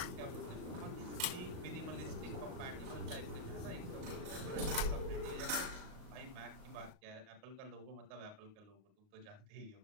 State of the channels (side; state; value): left; late; 38 ms